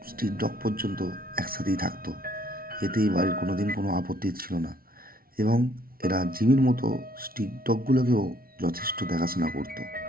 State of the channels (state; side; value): late; left; 0.43 ms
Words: স্ট্রিট ডগ পর্যন্ত একসাথেই থাকতো। এতে এই বাড়ির কোনোদিন কোনো আপত্তি ছিল না, এবং এরা জিমির মতো স্ট্রিট ডগগুলোকেও যথেষ্ট দেখাশোনা করতো।